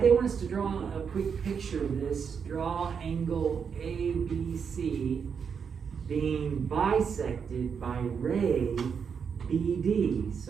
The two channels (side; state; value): left; quieter; 6.6 dB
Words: they want us to draw a quick picture of this. Draw angle ABC being bisected by ray BD.